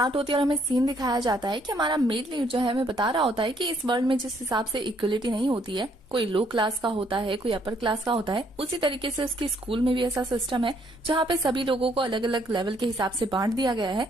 होती है और हमें सीन दिखाया जाता है कि हमारा मेल लीड जो है हमें बता रहा होता है कि इस वर्ल्ड में जिस हिसाब से इक्वलिटी नहीं होती है, कोई लो क्लास का होता है, कोई अपर क्लास का होता है, उसी तरीके से उसके स्कूल में भी ऐसा सिस्टम है जहाँ पे सभी लोगों को अलग अलग लेवल के हिसाब से बांट दिया गया है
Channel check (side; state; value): both; normal; correlation 0.68